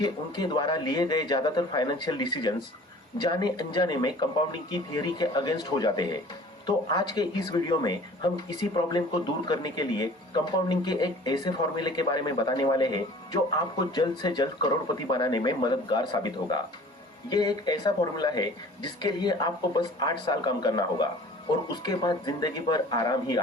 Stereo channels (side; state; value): both; normal; correlation 0.47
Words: उनके द्वारा लिए गए ज्यादातर फाइनेंशियल डिसीजंस जाने अनजाने में कंपाउंडिंग की थियरी के अगेंस्ट हो जाते हैं। तो आज के इस वीडियो में हम इसी प्रॉब्लम को दूर करने के लिए कंपाउंडिंग के एक ऐसे फॉर्मूले के बारे में बताने वाले हैं जो आपको जल्द से जल्द करोड़पति बनाने में मददगार साबित होगा। ये एक ऐसा फॉर्मूला है जिसके लिए आपको बस 8 साल काम करना होगा और उसके बाद जिंदगी भर आराम ही